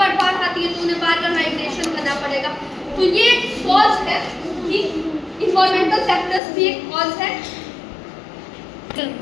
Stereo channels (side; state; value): right; drops out; at 6.4 s